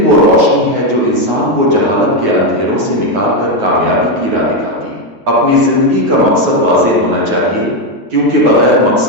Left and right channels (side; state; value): left; late; 9.4 ms